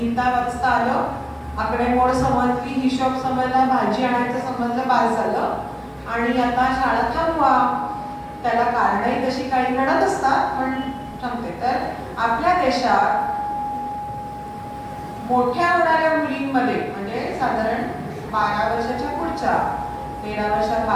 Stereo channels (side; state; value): both; identical; correlation 1.00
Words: वाचता आलं, आकडेमोड समजली, हिशोब समजला, भाजी आणायचं समजलं, बास झालं आणि आता शाळा थांबवा. त्याला कारणही तशी काही घडत असतात पण सांगते. तर आपल्या देशात मोठ्या होणाऱ्या मुलींमध्ये म्हणजे साधारण 12 वर्षाच्या पुढच्या 13 वर्षात